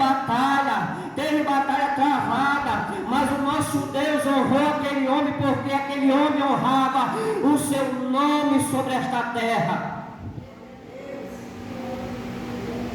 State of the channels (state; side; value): identical; both; correlation 1.00